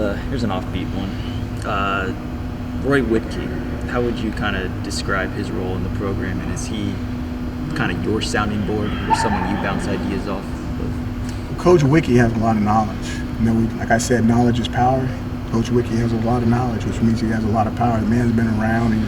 offbeat one. Roy Whitkey, how would you kind of describe his role in the program, and is he kind of your sounding board or someone you bounce ideas off of? Coach Wiki has a lot of knowledge. You know, like I said, knowledge is power. Coach Wiki has a lot of knowledge, which means he has a lot of power. The man's been around. He's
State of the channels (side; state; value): both; identical; correlation 1.00